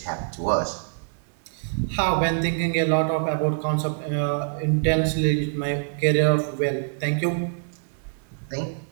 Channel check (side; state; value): left; silent; 62 dB below the other